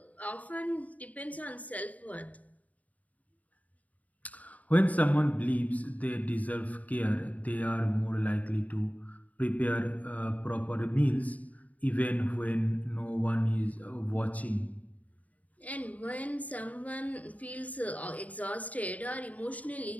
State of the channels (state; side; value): late; right; 0.072 ms